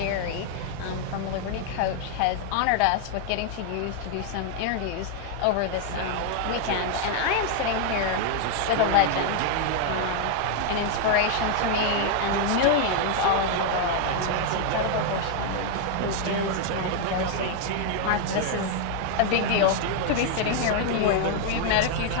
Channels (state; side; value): different; both; correlation 0.00